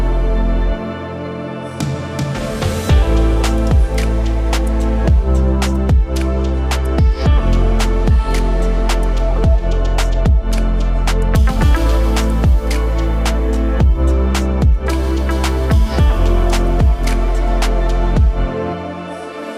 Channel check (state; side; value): identical; both; correlation 1.00